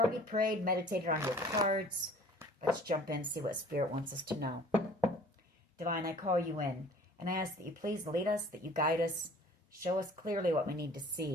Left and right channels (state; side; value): normal; both; correlation 0.50